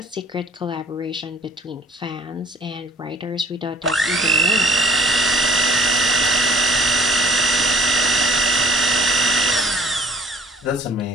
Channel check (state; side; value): normal; both; correlation 0.55